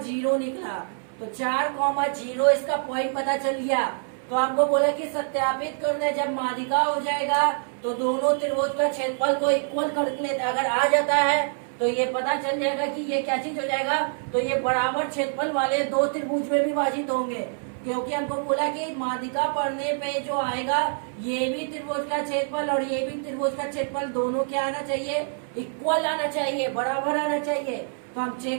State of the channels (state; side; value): silent; left; 60 dB below the other